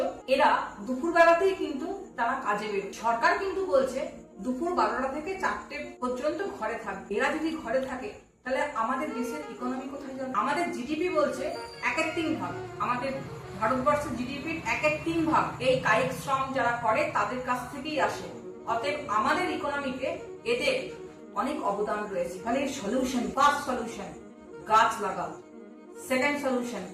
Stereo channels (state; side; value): identical; both; correlation 1.00